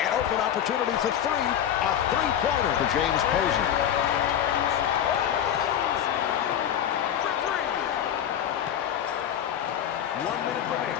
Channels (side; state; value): right; quieter; 9.9 dB